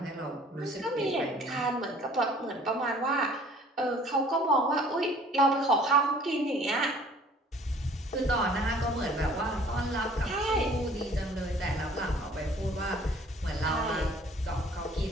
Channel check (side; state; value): both; normal; correlation 0.53